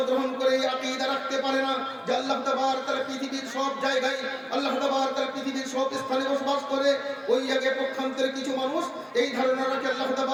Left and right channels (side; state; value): both; identical; correlation 1.00